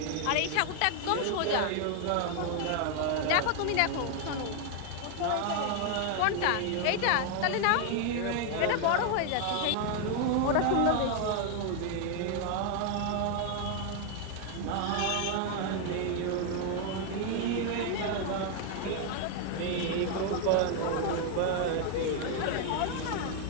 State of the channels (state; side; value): different; both; correlation 0.00